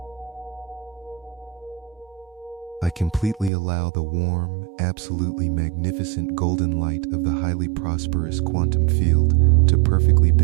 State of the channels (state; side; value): drops out; left; at 3.5 s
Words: I completely allow the warm, absolutely magnificent golden light of the highly prosperous quantum field to perfectly